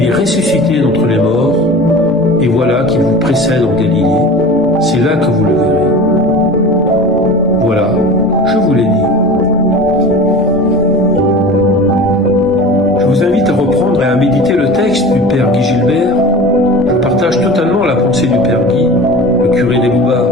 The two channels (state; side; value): normal; both; correlation 0.36